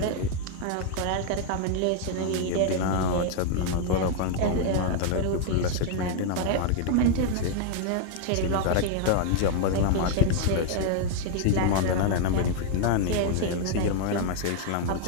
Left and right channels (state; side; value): different; both; correlation 0.00